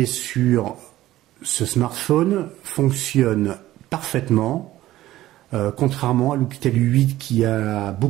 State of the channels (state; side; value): quieter; left; 15.1 dB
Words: sur ce smartphone fonctionne parfaitement, contrairement à l'Oukitel 8 qui a